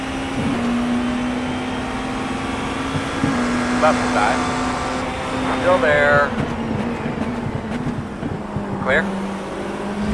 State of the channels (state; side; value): identical; both; correlation 1.00